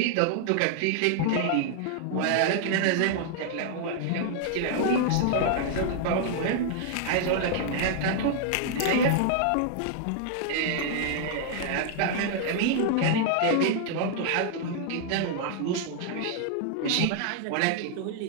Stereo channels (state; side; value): different; both; correlation 0.00